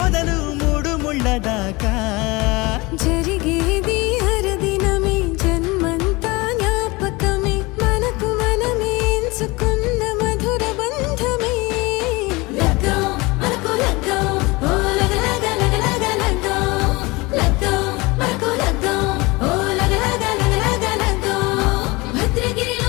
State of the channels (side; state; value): right; quieter; 23.8 dB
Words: మొదలు 3 ముళ్ళ దాకా జరిగేది హరదినమే జన్మంతా జ్ఞాపకమే మనకు మనమే ఎంచుకున్న మధుర బంధమే